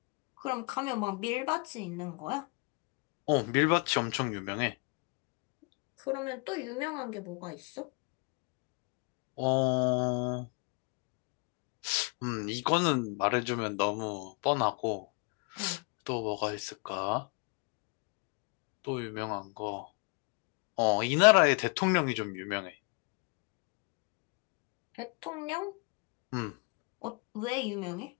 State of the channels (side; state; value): right; quieter; 33.5 dB